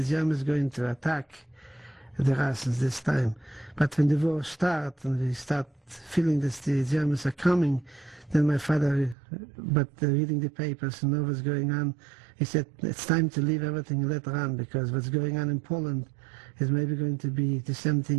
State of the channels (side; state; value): left; drops out; at 9.2 s